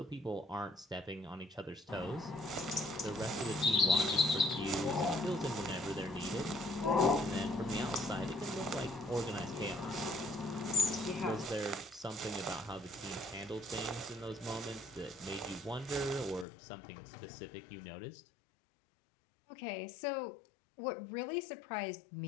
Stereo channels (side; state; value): right; drops out; at 16.4 s